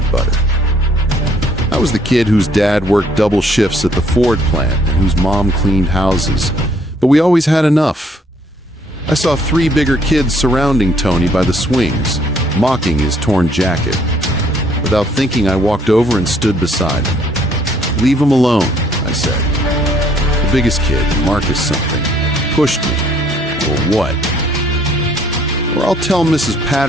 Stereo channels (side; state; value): both; normal; correlation 0.64